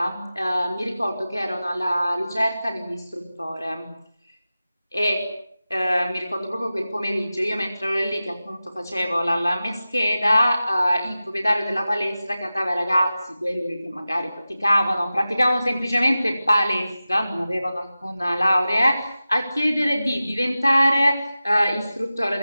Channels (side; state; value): both; inverted; correlation -0.95